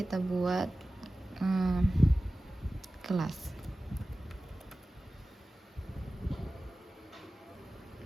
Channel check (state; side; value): normal; both; correlation 0.96